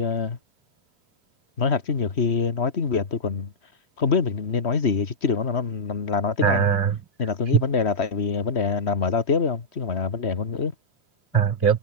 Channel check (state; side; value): late; right; 3.1 ms